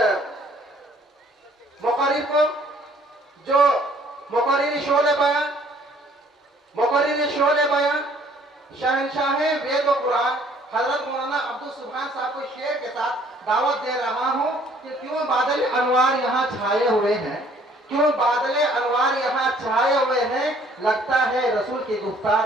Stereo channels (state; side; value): normal; both; correlation 0.59